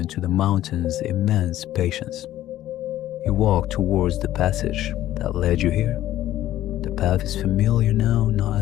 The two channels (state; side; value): quieter; right; 13.6 dB